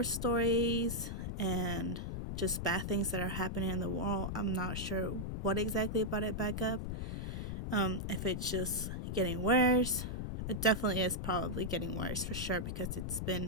stories, and just bad things that are happening in the world. I'm not sure what exactly brought it back up. If it's just getting worse. It definitely is probably getting worse for sure, because it's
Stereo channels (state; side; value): noise; left; rumble, 3 dB below the sound